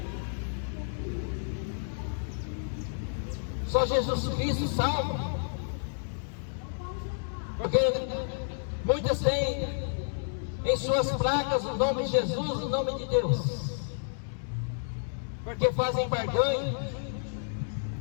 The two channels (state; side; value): silent; right; digital silence